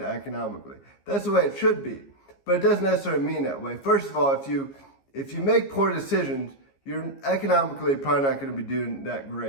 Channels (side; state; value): right; late; 15 ms